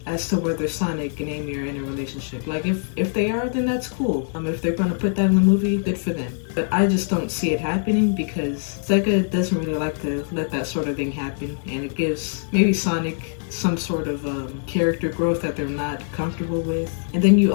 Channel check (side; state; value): right; silent; 63 dB below the other